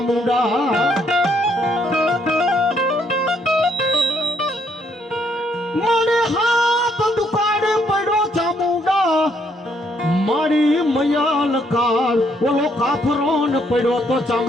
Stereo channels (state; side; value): normal; both; correlation 0.71